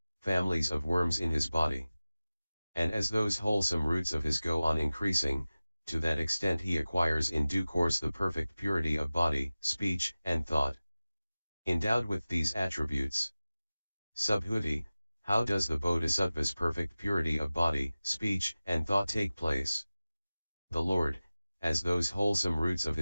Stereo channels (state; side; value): inverted; both; correlation -0.97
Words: families of worms in his body. And as those wholesome roots of his go on increasing, to that extent he acquires in due course the perfect purity of body, speech, and thought. Endowed with these attributes. Subhuti, how does the Bodhisattva's perfect purity of body, speech, and thought take place? The Lord, as those wholesome roots of